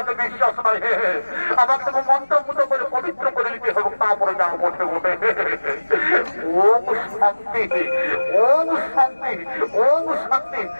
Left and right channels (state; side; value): inverted; both; correlation -1.00